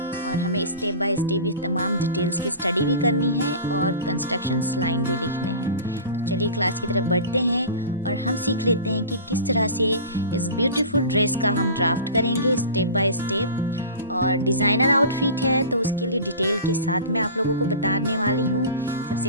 और हमें स्टेप बाय स्टेप ये तमाम डिटेल्स की स्टडी भी करनी है और कंस्ट्रक्शंस लाइन भी लिखने हैं। तो चलिए क्लास की तरफ बढ़ते हैं और हम सीख लेते हैं कि किस तरह से इस ब्यूटीफुल ड्रेस का हम ड्राफ्ट करेंगे स्टेप बाय स्टेप। और डिज़ाइनर आउटफिट है तो उसके लिए डिटेल के साथ मैं आप लोगों को बताने वाली हूँ।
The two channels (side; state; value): both; inverted; correlation -0.35